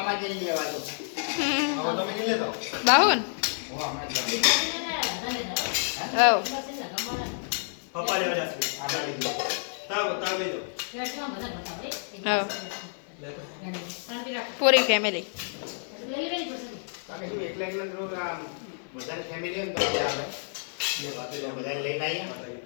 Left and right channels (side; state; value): right; silent; 57 dB below the other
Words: બાહુન પૂરી ફેમિલી